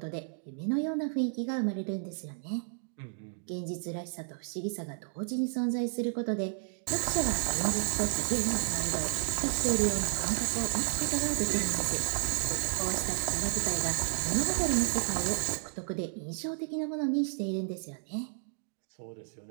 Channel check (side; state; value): left; silent; digital silence